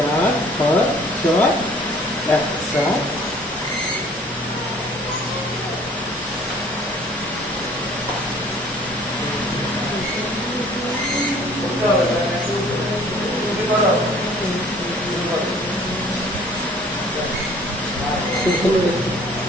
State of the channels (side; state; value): both; normal; correlation 0.54